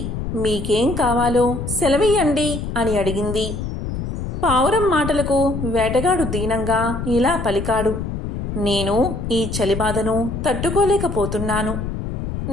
మీకేం కావాలో సెలవియ్యండి అని అడిగింది. పావురం మాటలకు వేటగాడు దీనంగా ఇలా పలికాడు, నేను ఈ చలిబాధను తట్టుకోలేకపోతున్నాను.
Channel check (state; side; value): noise; left; rumble, 5 dB below the sound